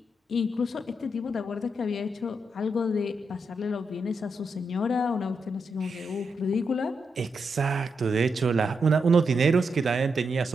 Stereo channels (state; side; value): normal; both; correlation 0.83